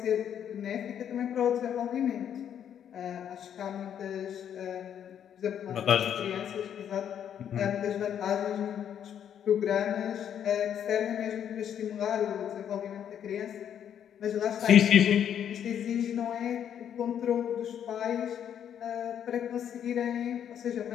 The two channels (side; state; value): right; quieter; 9.2 dB